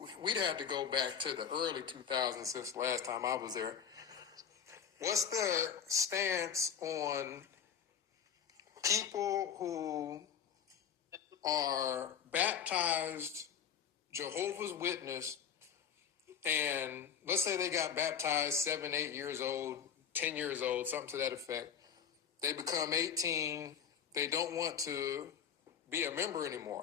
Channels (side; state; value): right; quieter; 7.9 dB